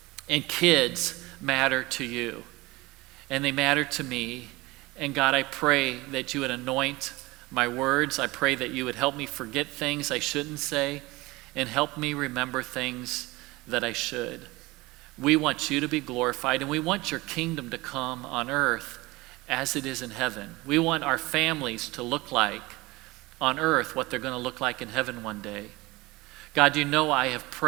and kids matter to you, and they matter to me. And God, I pray that you would anoint my words. I pray that you would help me forget things I shouldn't say and help me remember things that I should. We want you to be glorified, and we want your kingdom to come on earth as it is in heaven. We want our families to look like on earth what they're going to look like in heaven one day. God, you know I have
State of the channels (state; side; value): quieter; left; 21.6 dB